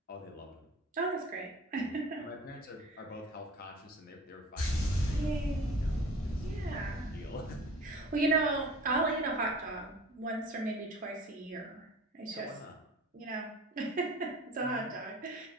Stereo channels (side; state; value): both; normal; correlation 0.42